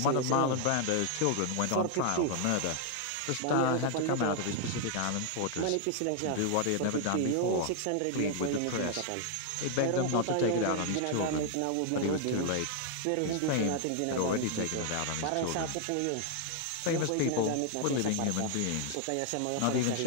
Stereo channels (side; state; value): both; different; correlation 0.00